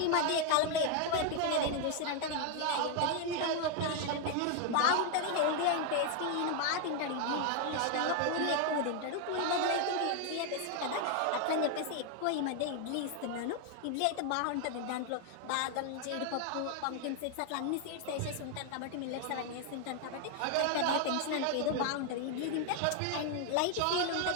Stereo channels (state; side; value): different; both; correlation 0.00